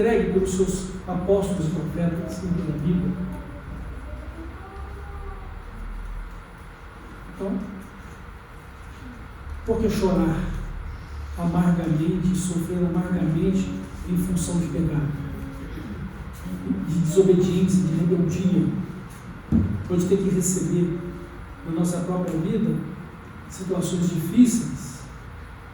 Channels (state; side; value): identical; both; correlation 1.00